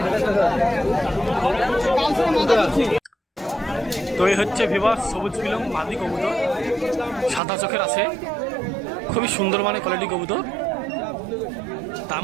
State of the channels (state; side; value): drops out; left; at 7.4 s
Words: তো এই হচ্ছে ভিভাস সবুজ পিলং মাদি কবুতর, সাদা চোখের আছে, খুবই সুন্দর মানে কোয়ালিটি কবুতর। দাম